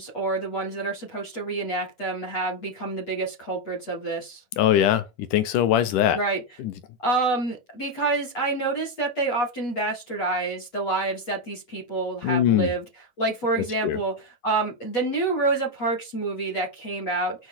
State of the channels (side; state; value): right; late; 8.3 ms